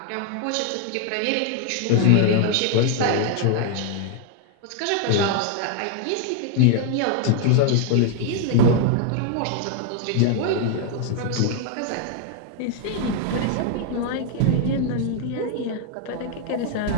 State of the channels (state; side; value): different; both; correlation 0.00